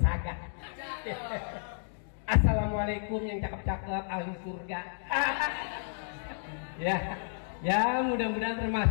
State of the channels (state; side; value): silent; right; digital silence